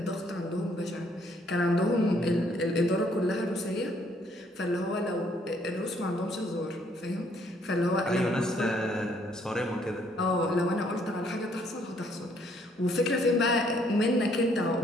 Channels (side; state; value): both; normal; correlation 0.66